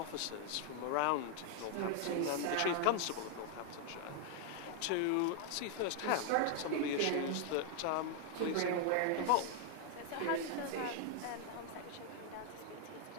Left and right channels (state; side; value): different; both; correlation 0.00